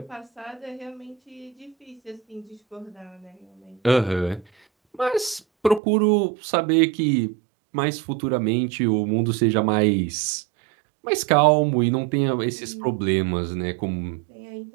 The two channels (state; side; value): drops out; left; at 5.8 s